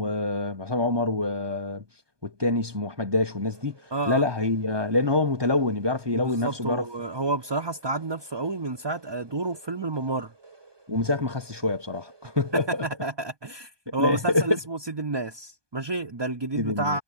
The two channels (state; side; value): late; left; 1.2 ms